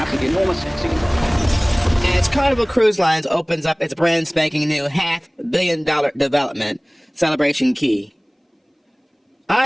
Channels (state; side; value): identical; both; correlation 1.00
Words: enormous. As Carnival Cruise Lines opens up its brand spanking new $500 million development, Celebration Key,